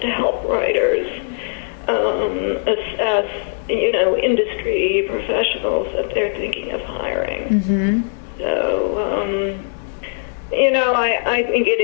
to help writers assess, industry professionals that they're thinking of hiring. So, I think it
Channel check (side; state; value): right; silent; digital silence